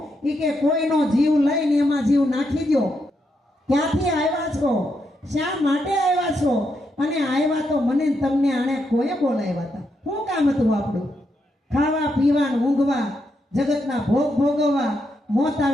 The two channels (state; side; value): normal; both; correlation 0.81